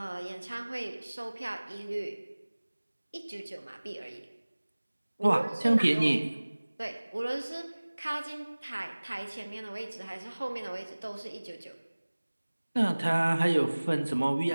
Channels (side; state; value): both; inverted; correlation -1.00